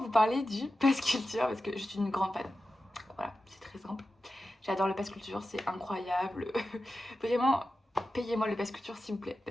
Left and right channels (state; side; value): normal; both; correlation 0.92